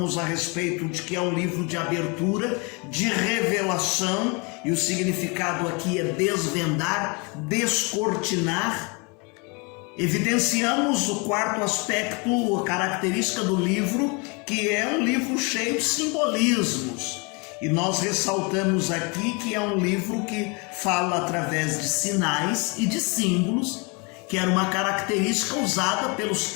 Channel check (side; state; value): right; quieter; 30.9 dB